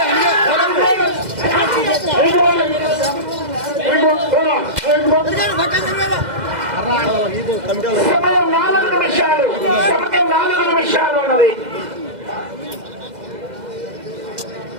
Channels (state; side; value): late; left; 2.0 ms